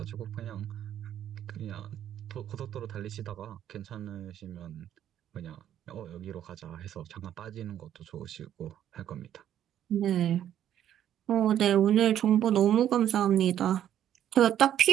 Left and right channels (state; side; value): quieter; left; 10.7 dB